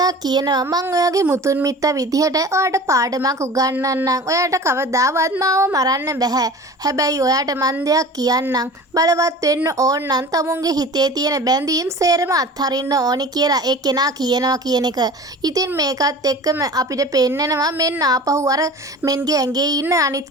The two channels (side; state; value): both; normal; correlation 0.39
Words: කියනවා මං ඔයාගේ මුතුන් මිත්තා විදිහට ඔයාට පාඩමක් උගන්වන්නම්. ඔයාට කවදාවත් මාව මරන්න බෑ. හැබැයි ඔයාට මං දෙයක් කියන්නම්. බලවත් වෙන්න ඕන නම් තමුන්ගේ හිතේ තියෙන බැඳීම් සේරම අත්හරින්න ඕනි කියලා ඒ කෙනා කියනවා කියන එක. ඉතින් මේකත් එක්කම අපිට පෙන්නනවා මෙන්න ආපහු අර මෙන්ගේ ඇඟේ ඉන්න